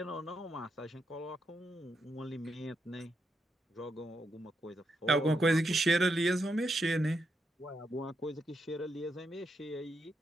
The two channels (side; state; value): both; normal; correlation 0.81